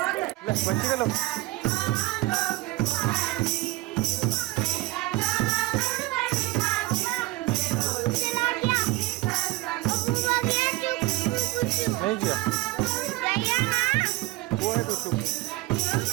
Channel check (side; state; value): left; quieter; 19.5 dB